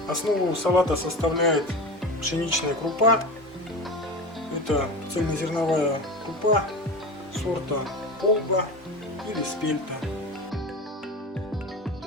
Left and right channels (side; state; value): both; normal; correlation 0.28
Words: Основу салата составляет пшеничная крупа. Это цельнозерновая крупа сорта полба или спельта.